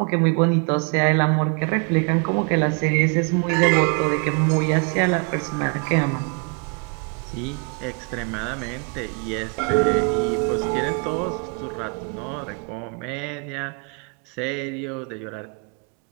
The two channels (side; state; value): left; quieter; 36.3 dB